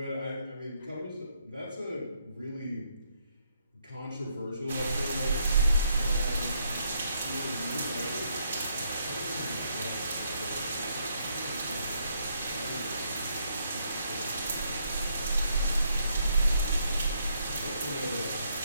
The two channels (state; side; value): inverted; both; correlation -0.73